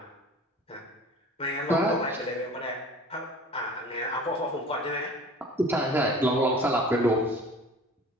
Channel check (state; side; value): normal; both; correlation 0.43